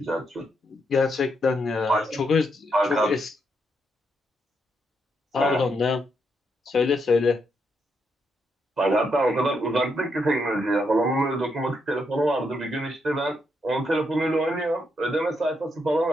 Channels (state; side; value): normal; both; correlation 0.79